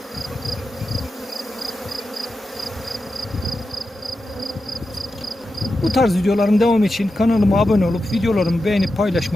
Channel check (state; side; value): normal; both; correlation 0.90